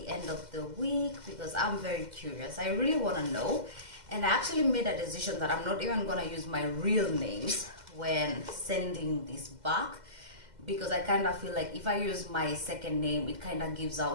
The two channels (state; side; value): late; left; 2.1 ms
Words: end of the week, because I'm very curious. I really want to know. And I actually made a decision that I'm not even gonna use my real names when sending this back, because I kind of feel like if I use my second name, it kind of gives